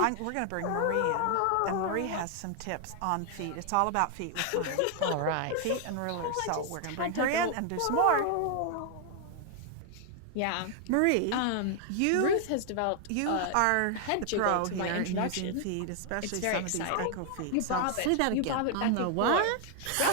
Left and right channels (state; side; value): different; both; correlation 0.00